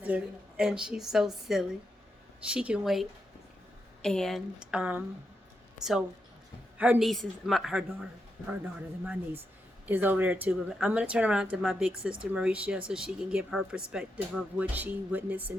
and she's so silly. She can wait. And so her niece is her daughter and my niece is over there too. But I'm going to turn around to my big sister Mauricia so she can give her perspective of what she witnessed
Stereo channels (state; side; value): normal; both; correlation 0.84